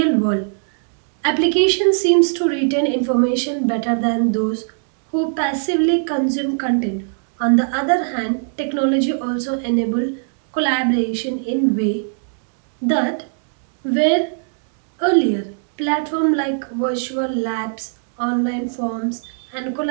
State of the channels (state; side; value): silent; left; digital silence